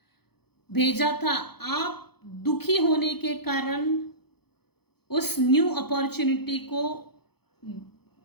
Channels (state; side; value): late; right; 0.97 ms